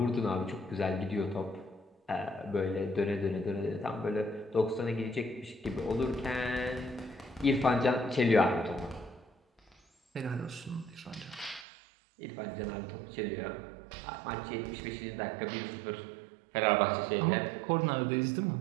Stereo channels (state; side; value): drops out; left; at 11.7 s